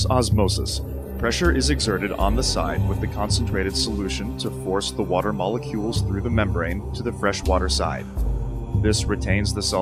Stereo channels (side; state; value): both; identical; correlation 1.00